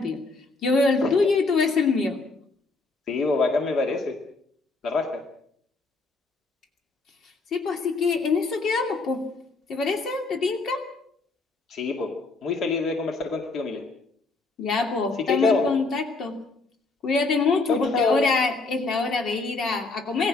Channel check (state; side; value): quieter; right; 3.6 dB